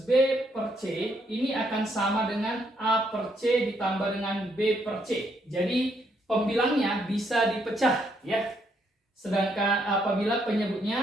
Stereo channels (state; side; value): normal; both; correlation 0.73